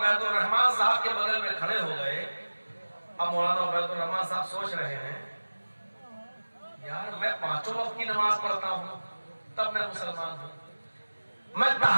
रहमान साहब के बगल में खड़े हो गए। अब मौलाना उबैदुर रहमान साहब सोच रहे हैं, यार मैं 5 वक्त की नमाज पढ़ता हूँ तब मैं मुसलमान हूँ, मैं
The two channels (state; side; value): inverted; both; correlation -1.00